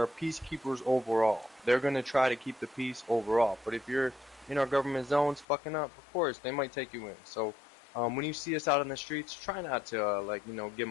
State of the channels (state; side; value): drops out; right; at 5.5 s